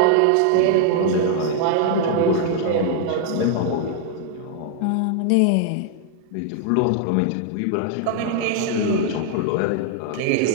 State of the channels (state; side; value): different; both; correlation 0.00